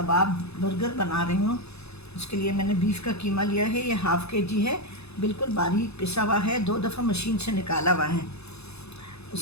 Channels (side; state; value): right; late; 0.79 ms